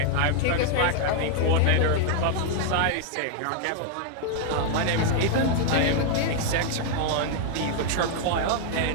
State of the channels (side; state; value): both; different; correlation 0.00